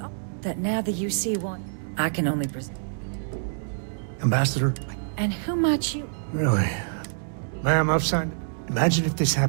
that now the UC want... I can only presume... Ambassador, And who might you... really? Ma'am, I've signed... Imagine if this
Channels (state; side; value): silent; left; 61 dB below the other